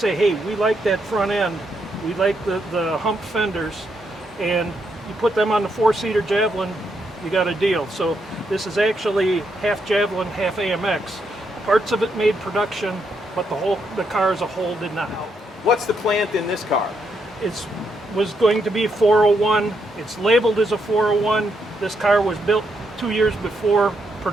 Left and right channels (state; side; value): normal; both; correlation 0.79